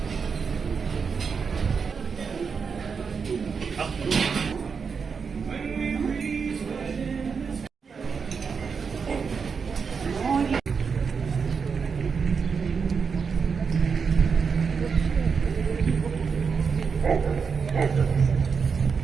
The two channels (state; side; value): quieter; left; 5.7 dB